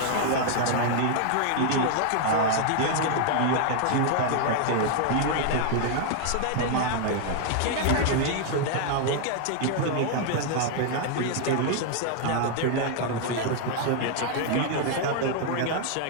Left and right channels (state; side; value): different; both; correlation 0.00